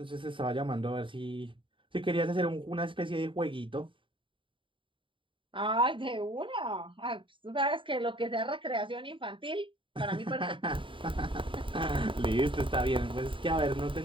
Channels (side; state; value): left; late; 0.25 ms